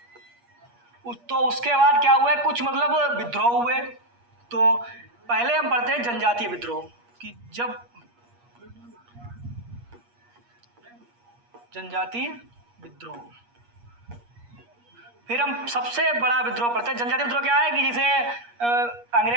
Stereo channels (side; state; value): left; late; 8.4 ms